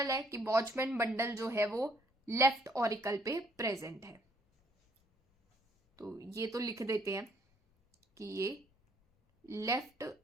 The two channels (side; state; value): both; normal; correlation 0.65